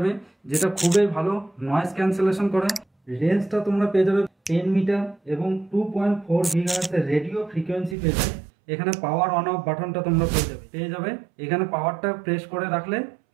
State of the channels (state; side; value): drops out; left; at 8.0 s